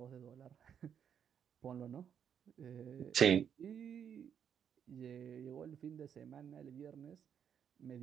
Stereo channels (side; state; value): left; quieter; 8.2 dB